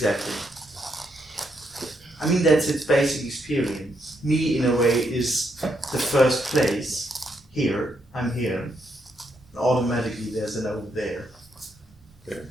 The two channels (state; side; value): normal; both; correlation 0.78